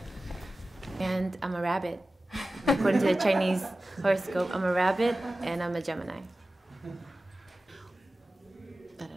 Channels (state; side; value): normal; both; correlation 0.95